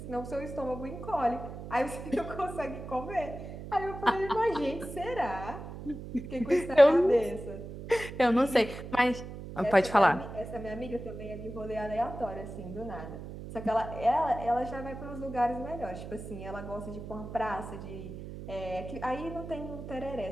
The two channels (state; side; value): noise; right; hum, 10 dB below the sound